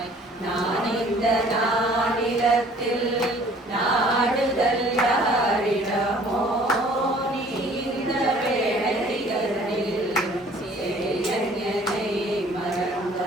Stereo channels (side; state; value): both; normal; correlation 0.54